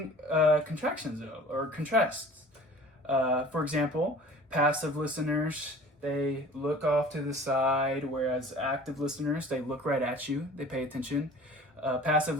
contractions though, or contrasts. For example, passive listeners, they look off to the side, whereas active listeners, they look right at you, they pay attention. Passive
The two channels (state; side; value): normal; both; correlation 0.45